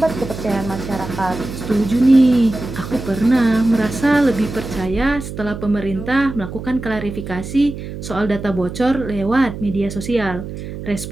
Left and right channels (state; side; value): noise; right; hum, 9 dB below the sound